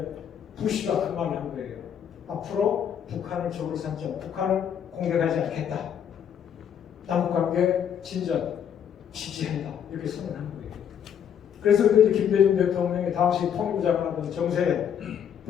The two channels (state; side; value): quieter; right; 8.7 dB